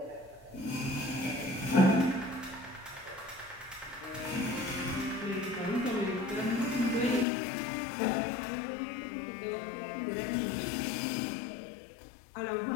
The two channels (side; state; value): right; drops out; at 7.2 s